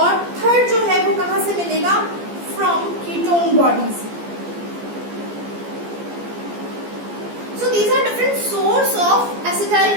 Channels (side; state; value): left; late; 14 ms